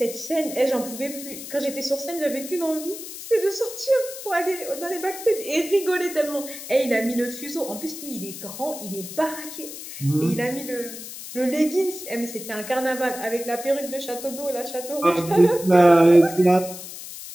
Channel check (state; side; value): noise; left; hiss, 11 dB below the sound